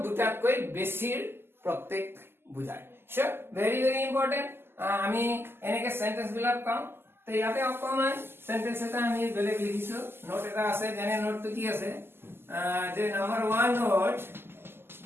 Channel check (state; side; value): late; left; 0.11 ms